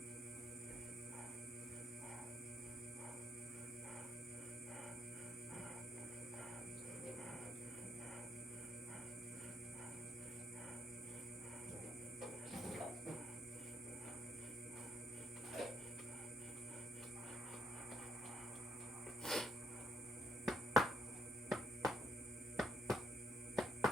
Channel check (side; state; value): both; normal; correlation 0.75